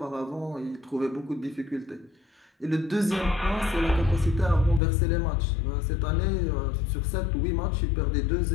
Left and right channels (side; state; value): right; drops out; at 4.8 s